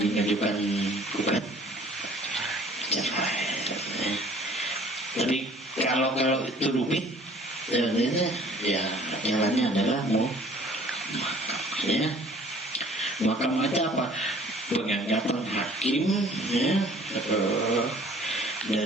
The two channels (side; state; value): both; normal; correlation 0.53